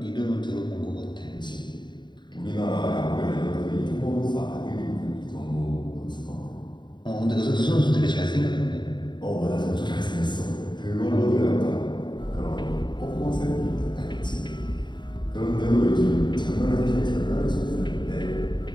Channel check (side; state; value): right; late; 0.22 ms